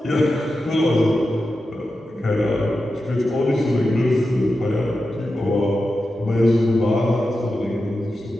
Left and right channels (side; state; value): both; normal; correlation 0.91